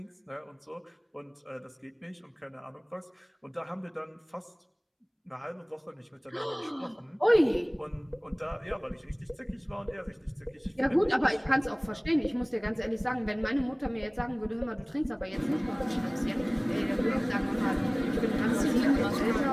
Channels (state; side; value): identical; both; correlation 1.00